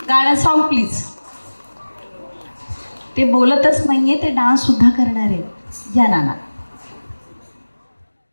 गाणं सॉन्ग प्लीज. ते बोलतच नाहीये, ते डान्स सुद्धा करणार आहे. या नाना.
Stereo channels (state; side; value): inverted; both; correlation -1.00